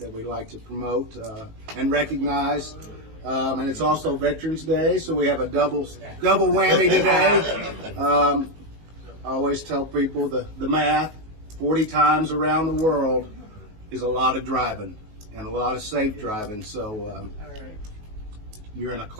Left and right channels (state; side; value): late; left; 19 ms